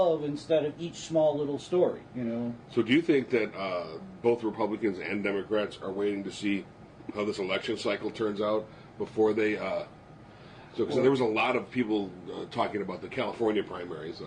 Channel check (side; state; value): both; identical; correlation 1.00